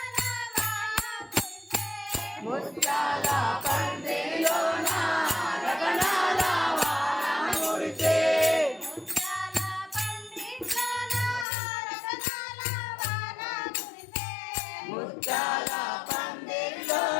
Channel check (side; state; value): right; drops out; at 11.5 s